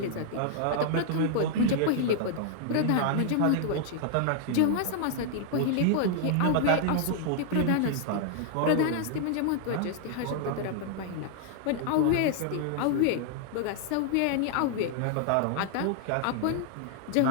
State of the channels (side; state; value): both; different; correlation 0.00